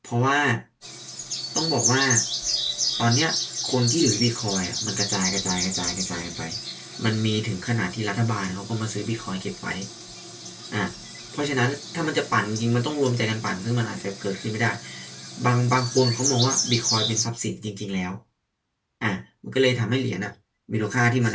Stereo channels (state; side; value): identical; both; correlation 1.00